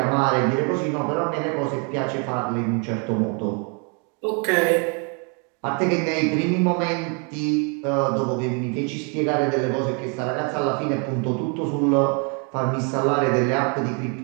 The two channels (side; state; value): left; quieter; 36.3 dB